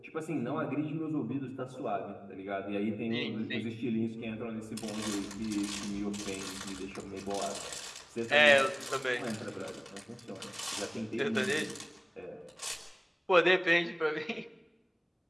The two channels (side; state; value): both; identical; correlation 1.00